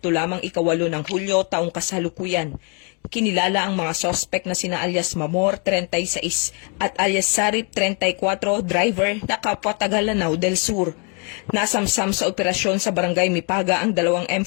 lamang 8 ng Hulyo taong kasalukuyan. Kinilala ang mga sospek na sina alias Mamor, 36 at alias Sarip, 34, driver na kapwa taga Lanao del Sur. Nasamsam sa operasyon sa Barangay Mipaga ang dalawang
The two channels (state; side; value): quieter; right; 35.5 dB